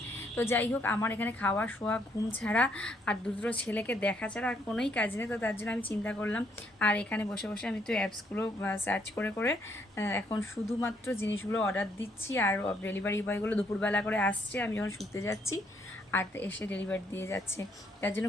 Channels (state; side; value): normal; both; correlation 0.71